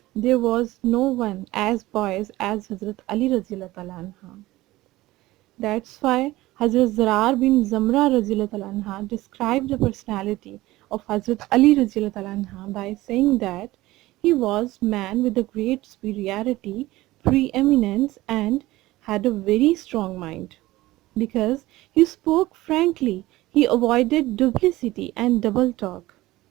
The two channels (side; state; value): left; quieter; 17.9 dB